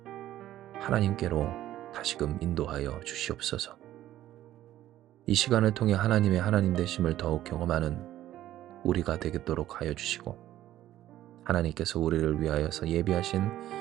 하나님께로 다시금 인도하여 주시옵소서. 이 시간을 통해 하나님의 하나님 되심을 더욱 경험하는 우리가 되겠도록 하여 주시고, 하나님께서 우리를 위하여서 예비하신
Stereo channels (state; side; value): quieter; left; 13.4 dB